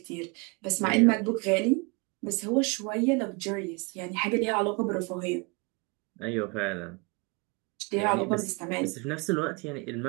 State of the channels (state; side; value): quieter; left; 29.7 dB